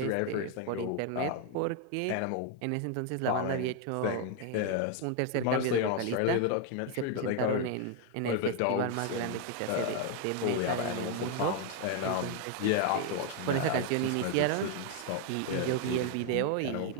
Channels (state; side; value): different; both; correlation 0.00